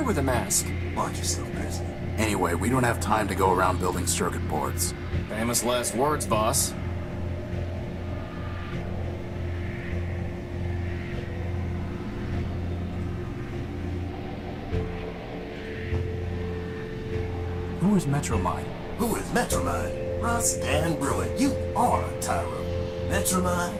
with a mask. Watch yourself, Chris. Anyway, we don't have time to go around building circuit boards. Famous last words, boss. Who is Metromine? Who is Metromine? Russ Dan Bruin, you are a Tyro. Metromine?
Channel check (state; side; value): identical; both; correlation 1.00